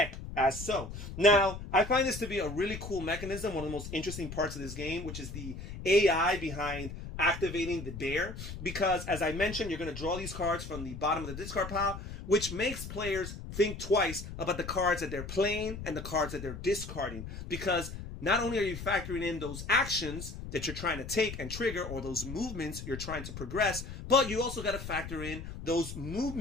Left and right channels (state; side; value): noise; left; rumble, 9 dB below the sound